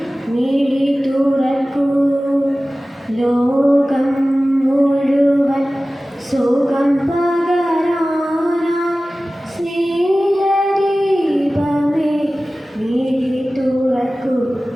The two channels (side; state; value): both; normal; correlation 0.97